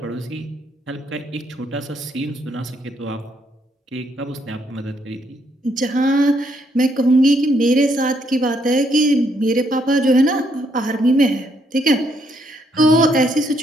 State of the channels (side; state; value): both; normal; correlation 0.73